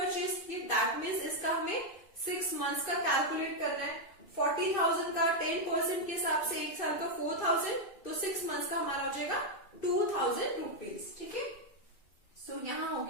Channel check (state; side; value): late; right; 2.6 ms